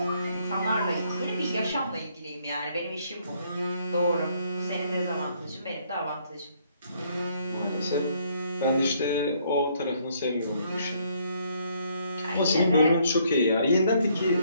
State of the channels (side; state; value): both; inverted; correlation -0.68